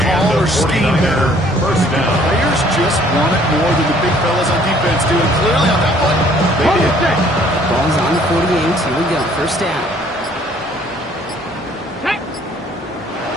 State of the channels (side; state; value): both; normal; correlation 0.59